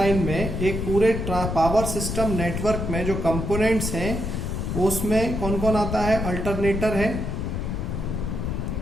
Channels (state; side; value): noise; left; rumble, 3 dB below the sound